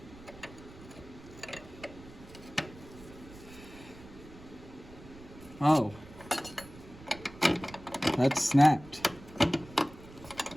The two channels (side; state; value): right; noise; rumble, 18 dB below the sound